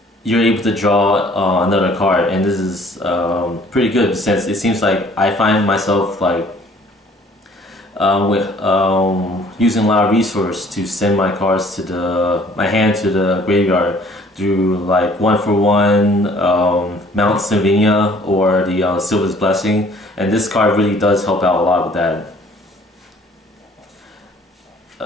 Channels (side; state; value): both; normal; correlation 0.56